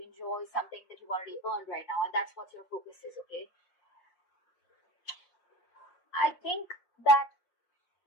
something that you've already earned right now, and that's what your focus is, okay? I think that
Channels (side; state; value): right; late; 5.6 ms